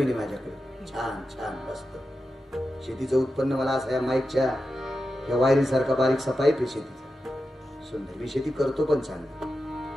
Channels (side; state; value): both; normal; correlation 0.90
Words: आहे माझ्याकडे, छान छान मस्त. शेतीचं उत्पन्न मला असं या माईकच्या या वायरीसारखा बारीकसा पाईप आहे शेतीचा, सुंदर. मी शेती करतो पण चांगली.